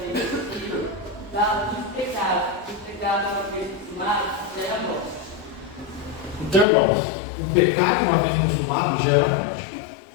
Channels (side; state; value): right; drops out; at 6.7 s